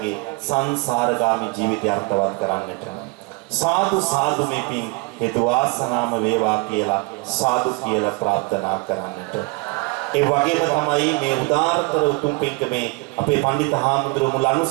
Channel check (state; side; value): quieter; left; 27.4 dB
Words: සංසාරගාමී ජීවිතය අර්ථවත් කරන්නට සාදු සාදු මේ පින් හේතු වාසනාම වේවා කියලා සාදු කියලා ප්‍රාර්ථනා කරන්නට. ඒ වගේම තමයි මේ උදාාරතර උතුම් පින්කමේ අපේ පඬිත හාමුදුරුවෝ මුල්